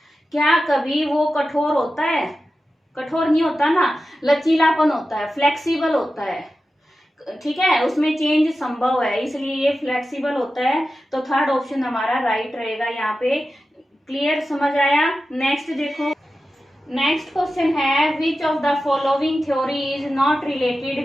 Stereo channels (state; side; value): normal; both; correlation 0.93